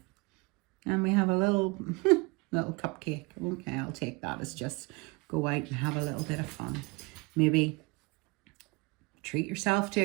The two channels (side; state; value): left; quieter; 26.9 dB